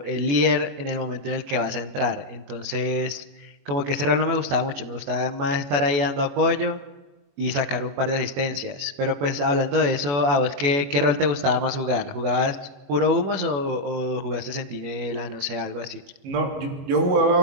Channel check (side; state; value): left; late; 21 ms